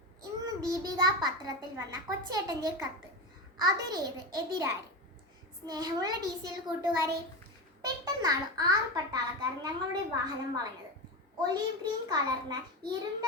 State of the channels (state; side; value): normal; both; correlation 0.19